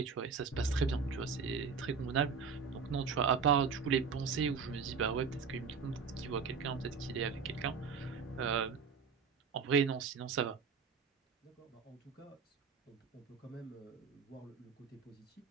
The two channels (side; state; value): left; quieter; 5.7 dB